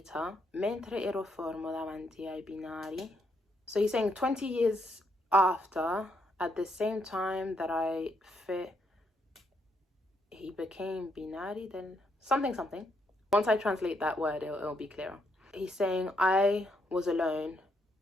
mentre ero fermo davanti ai binari. So he's saying 20 years after, at the same time that he became binari, then something. Once I translate that word, it'll be clearer. He's saying I was alone.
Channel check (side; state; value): both; normal; correlation 0.76